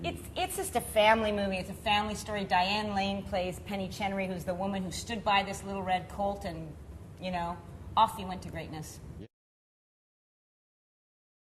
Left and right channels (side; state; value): both; identical; correlation 1.00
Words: it's just a family movie. It's a family story. Diane Lane plays Penny Chenery, who's the woman who stood by this little red colt, and, off he went to greatness.